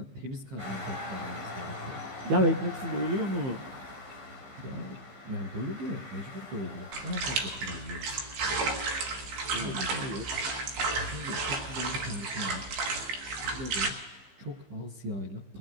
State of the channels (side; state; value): left; late; 15 ms